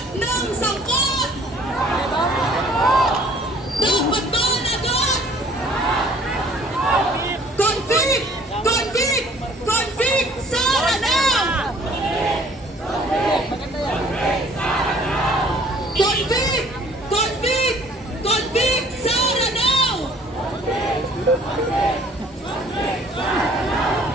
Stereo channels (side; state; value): both; normal; correlation 0.55